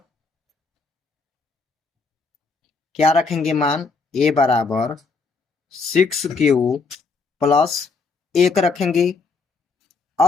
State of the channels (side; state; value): right; quieter; 4.4 dB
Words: क्या रखेंगे मान, a बराबर 6q प्लस 1 रखेंगे।